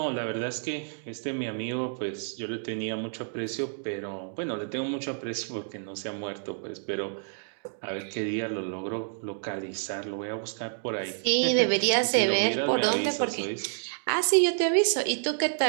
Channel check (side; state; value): left; silent; digital silence